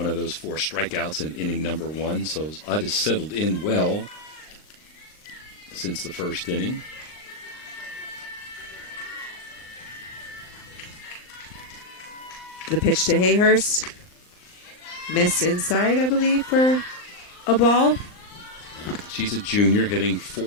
of those 4 strikeouts in inning number 1, so Ut has settled in well since the first inning. The pitch to Hayhurst. Missed inside, I believe, for a ball. She's a junior hitting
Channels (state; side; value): late; right; 39 ms